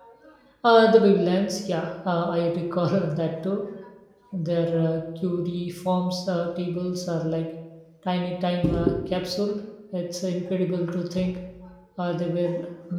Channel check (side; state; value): both; identical; correlation 1.00